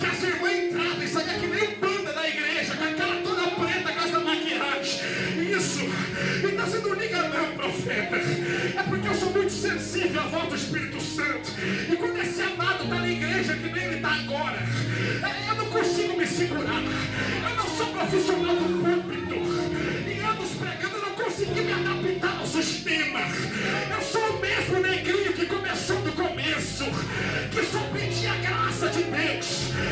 as irmãs entravam e saíam que nem banda da igreja, com a cara toda preta, com essa maquiagem. Isso, então você não liga não, profeta. É porque eu sou muito sensível à voz do Espírito Santo. E quando esse amado está na igreja que nem ele está agora, eu não consigo me segurar. Eu não sou profissional do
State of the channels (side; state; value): both; identical; correlation 1.00